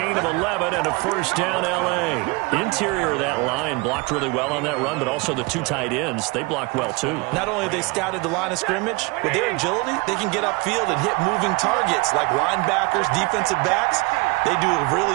of 11 and a first down L.A. Interior of that line blocked really well on that run, but also the 2 tight ends, they blocked well too. Not only have they scouted the line of scrimmage, with their agility, they can get upfield and hit moving targets like linebackers, defensive backs. They do a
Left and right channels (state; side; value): quieter; left; 26.5 dB